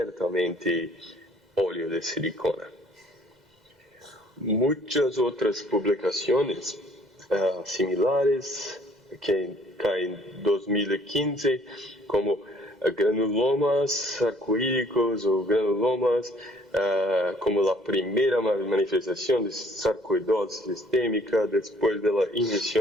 óleo de silicona. Muchas otras publicaciones similares que en 2015, como granulomas sarcoídicos o granulomas como la primera manifestación de sarcoidosis sistémica después de la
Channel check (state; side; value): normal; both; correlation 0.59